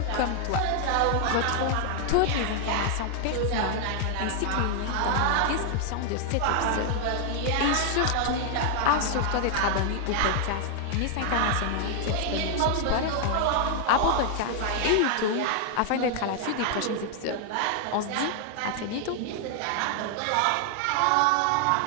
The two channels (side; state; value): both; different; correlation 0.00